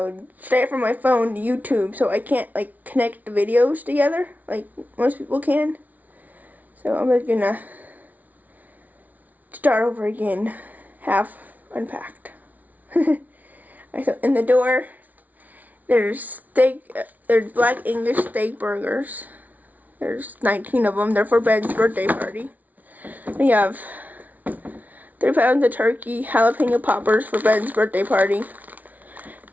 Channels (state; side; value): late; left; 0.075 ms